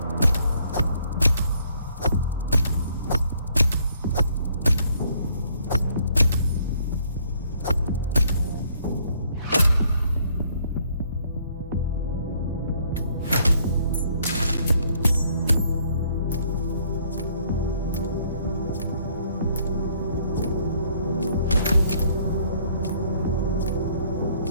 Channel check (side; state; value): both; inverted; correlation -0.65